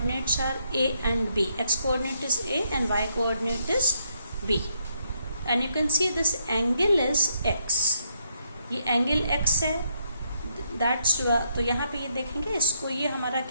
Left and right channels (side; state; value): both; inverted; correlation -0.75